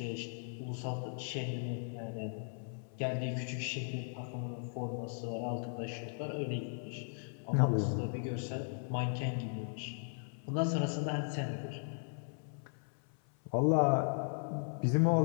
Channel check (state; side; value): silent; right; 53 dB below the other